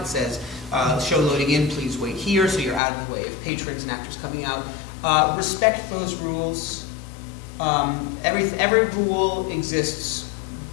says, show loading in, please wait here, so you're out of the way of patrons and actors coming out. Respect those rules. Every rule exists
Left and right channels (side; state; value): right; drops out; at 2.8 s